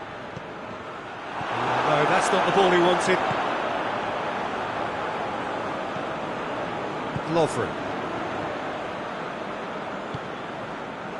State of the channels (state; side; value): identical; both; correlation 1.00